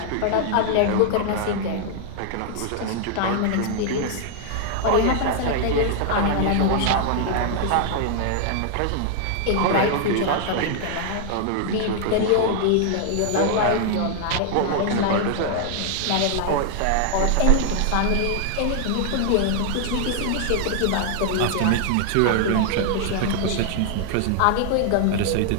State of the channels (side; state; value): both; different; correlation 0.00